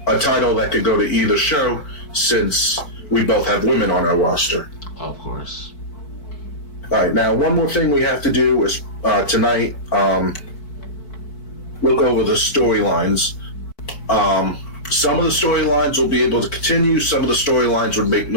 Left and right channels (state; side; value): late; right; 4.6 ms